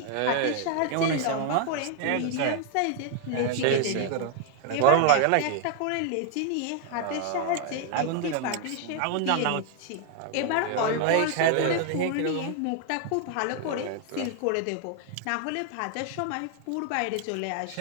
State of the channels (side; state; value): both; different; correlation 0.00